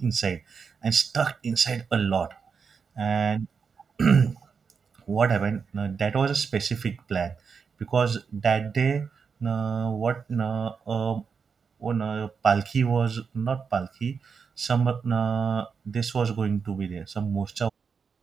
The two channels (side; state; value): left; quieter; 5.8 dB